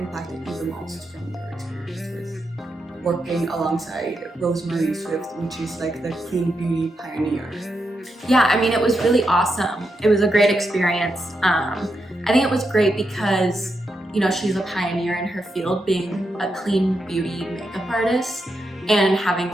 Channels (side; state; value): both; normal; correlation 0.84